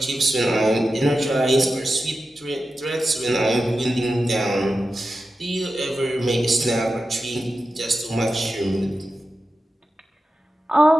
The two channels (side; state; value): both; normal; correlation 0.92